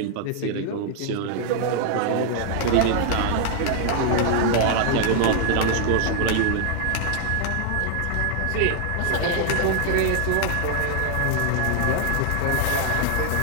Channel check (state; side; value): different; both; correlation 0.00